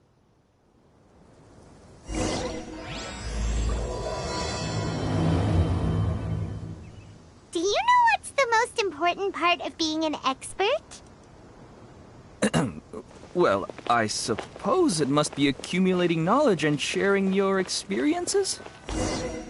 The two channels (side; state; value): both; identical; correlation 1.00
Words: Do you know what's the most important part of being an expert? Well, I suppose it must be accumulating knowledge and sharing your experiences?